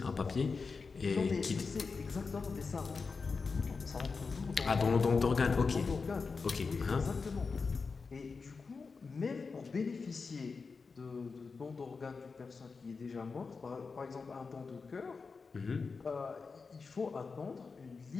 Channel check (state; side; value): quieter; right; 4.7 dB